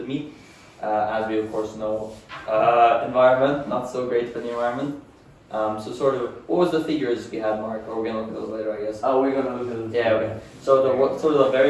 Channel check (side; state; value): both; identical; correlation 1.00